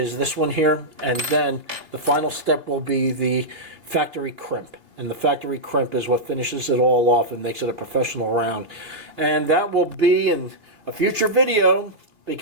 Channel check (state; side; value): late; left; 3.1 ms